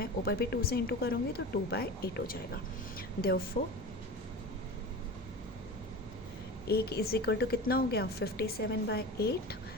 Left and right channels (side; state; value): both; normal; correlation 0.32